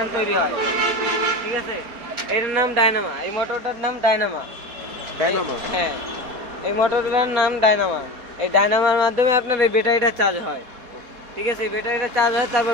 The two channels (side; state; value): left; late; 4.2 ms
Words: তৈরি হয়, ঠিক আছে। এটার নাম ডায়নামা, এই মোটরটার নাম ডায়নামা। হ্যাঁ, এই মোটরটার নাম ডায়নামা। এই ডায়নামার মাধ্যমে আপনার এই ব্যাটারিটা চার্জ হয়, ঠিক আছে। ব্যাটারিটা চার্জ হয়, তারপর